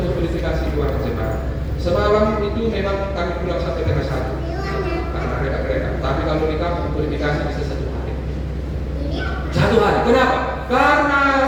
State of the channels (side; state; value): both; identical; correlation 1.00